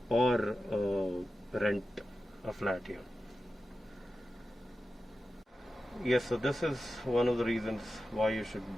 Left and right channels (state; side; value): normal; both; correlation 0.92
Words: or rent a flat here. Yes, so this is one of the reasons why you should